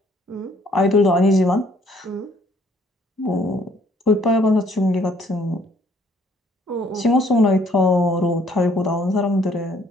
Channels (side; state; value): both; normal; correlation 0.63